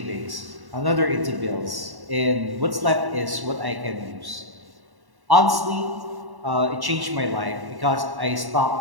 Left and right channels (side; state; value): left; late; 1.1 ms